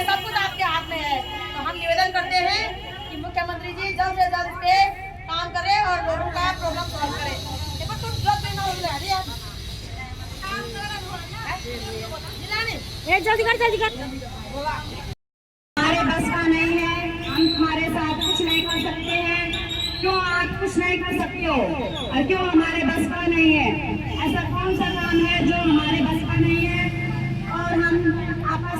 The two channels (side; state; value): both; identical; correlation 1.00